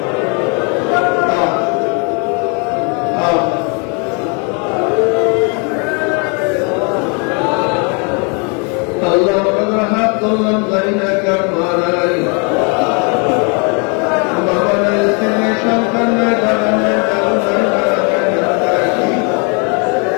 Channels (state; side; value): quieter; right; 35.3 dB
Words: আল্লাহ আমাদের হাত ধরলাম জানি না কার মারাই, বাবা নাই, স্ত্রী সন্তান নাই, দাদা নাই, দাদু নাই,